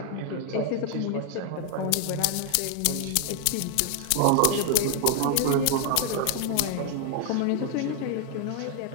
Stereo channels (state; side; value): different; both; correlation 0.00